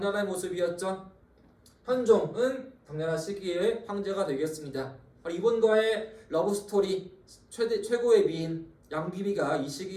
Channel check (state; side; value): identical; both; correlation 1.00